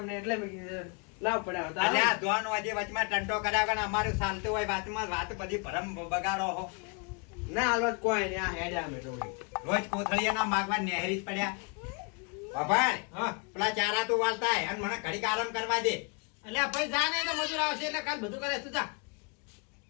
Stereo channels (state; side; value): quieter; right; 35.2 dB